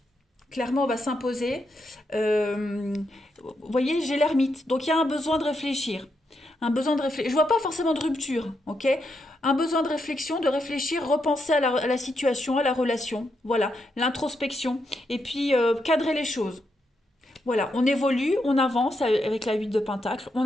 Clairement, on va s'imposer. Vous voyez, j'ai l'ermite, donc il y a un besoin de réfléchir. Un besoin de réfléchir. Je vois pas forcément de rupture, ok? Un besoin de réflexion, de réfléchir, repenser à la situation, à la relation. Voilà, l'introspection. Et puis, cadrer les choses. Voilà, on évolue, on avance avec la 8 de Pentacle, on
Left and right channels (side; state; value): both; normal; correlation 0.82